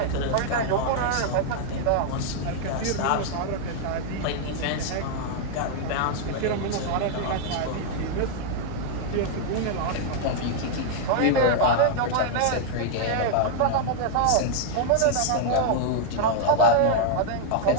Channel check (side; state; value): both; different; correlation -0.01